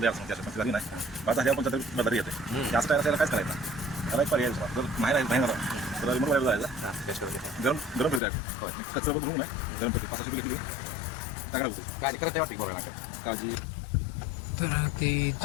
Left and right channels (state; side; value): drops out; right; at 8.2 s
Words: त्याच्या पण झाली नाही. आता ह्या पण बदल येते. जास्त टायर त्याला कायच करायचं त्याला एक पर्याय जर नाही राहिला तर रिमोट वायर जायचं, गरम गरम फिरू द्यायचं. कचरा बघून नाही गरम फिरते 500 रुपये घेतली टाकला होतो काय करत वाटते बोलायला काळजी. तर ते